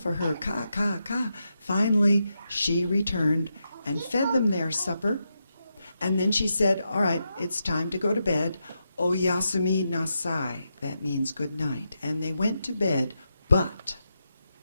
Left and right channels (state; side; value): inverted; both; correlation -0.86